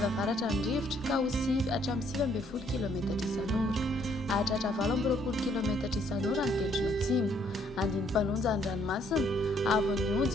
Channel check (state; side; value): normal; both; correlation 0.66